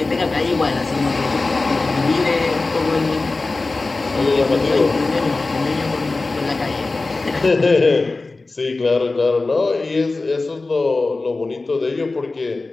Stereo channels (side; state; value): right; quieter; 3.5 dB